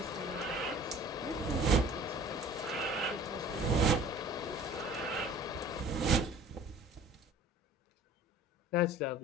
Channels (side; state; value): both; normal; correlation 0.47